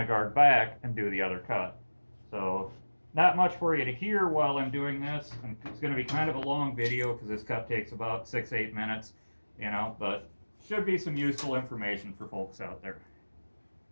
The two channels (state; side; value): inverted; both; correlation -1.00